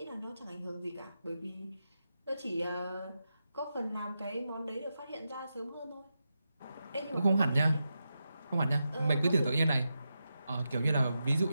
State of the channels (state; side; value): inverted; both; correlation -0.89